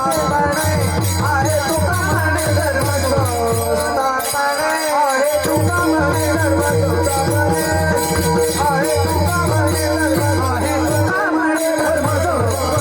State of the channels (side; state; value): both; identical; correlation 1.00